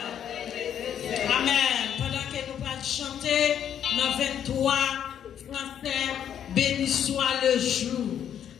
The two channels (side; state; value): right; quieter; 9.4 dB